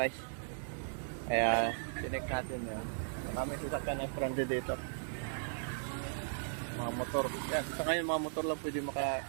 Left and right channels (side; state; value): left; silent; 53 dB below the other